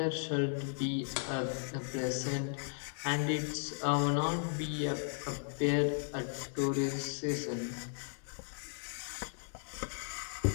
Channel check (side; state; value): right; silent; digital silence